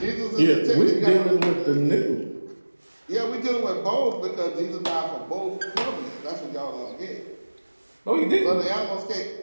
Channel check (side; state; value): both; inverted; correlation -1.00